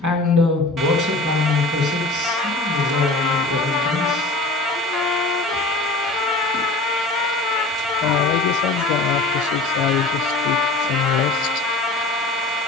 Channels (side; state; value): right; quieter; 3.0 dB